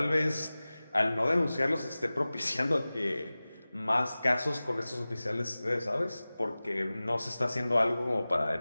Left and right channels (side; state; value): both; inverted; correlation -0.98